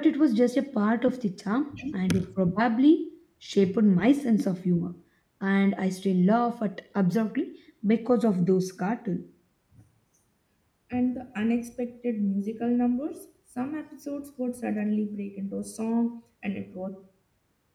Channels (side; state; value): both; identical; correlation 1.00